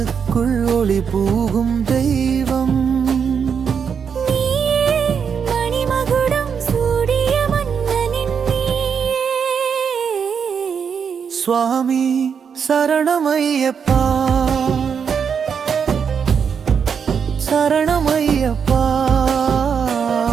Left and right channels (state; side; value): quieter; left; 6.8 dB